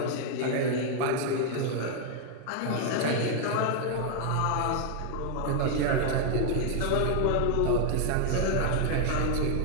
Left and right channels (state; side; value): different; both; correlation 0.00